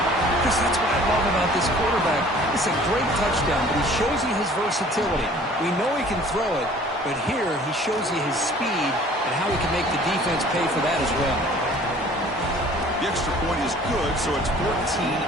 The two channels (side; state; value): both; normal; correlation 0.51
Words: Chris, that's what I love about this quarterback. It's a great touchdown, but he shows you his versatility. We know he can throw it, but here he shows you his speed and how he can make the defense pay for that as well. The extra point is good, so it's